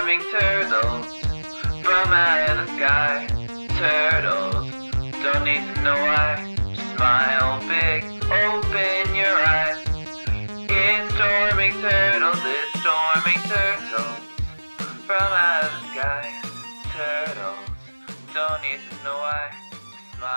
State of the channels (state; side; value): inverted; both; correlation -1.00